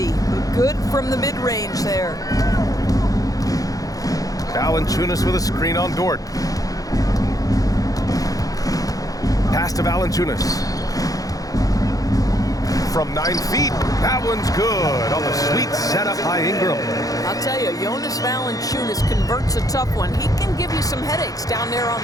Good from the mid-range there. Valanciunas with a screen on Dort. Pass to Valanciunas. From 9 feet, that one's good on the sweet setup by Ingram. I'll tell you, Jonas Valanciunas converts a tough one. He can give you some headaches down there on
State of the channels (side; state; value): right; late; 0.17 ms